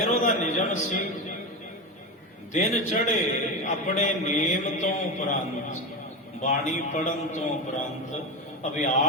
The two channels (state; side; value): normal; both; correlation 0.19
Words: ਉਹਦਾ ਨਿਯਮ ਸੀ, ਦਿਨ ਚੜੇ ਆਪਣੇ ਨੇਮ ਤੋਂ ਉਪਰੰਤ, ਬਾਣੀ ਪੜਨ ਤੋਂ ਉਪਰੰਤ,